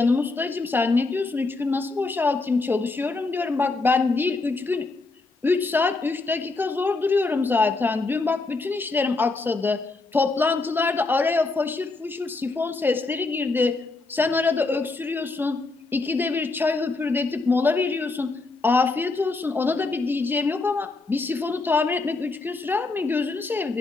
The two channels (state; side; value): quieter; right; 3.6 dB